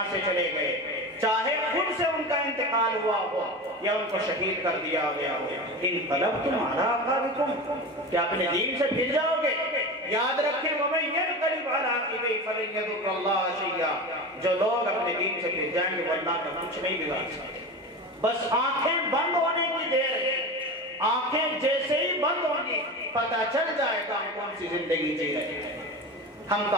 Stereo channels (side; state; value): both; normal; correlation 0.27